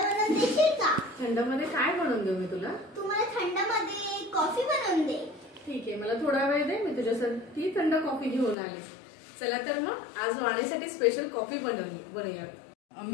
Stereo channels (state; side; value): drops out; right; at 8.6 s